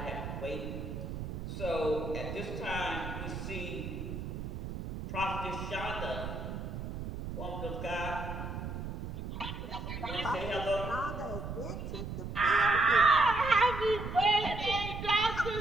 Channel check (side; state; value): right; noise; rumble, 6 dB below the sound